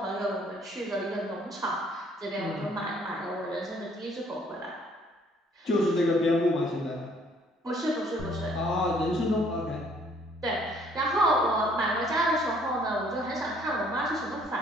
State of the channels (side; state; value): both; normal; correlation 0.62